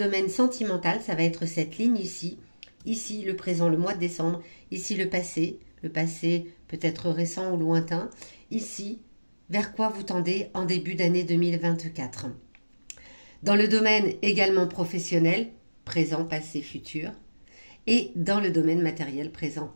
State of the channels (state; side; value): inverted; both; correlation -1.00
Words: sentimental, ça va être cette ligne ici. Ici, le présent, le mois de décembre. Ici, le passé peut-être récent ou lointain. Ici, vers quoi vous tendez en début d'année 2024. Dans le domaine également professionnel, présent, passé, futur. Et dans le domaine matériel, présent,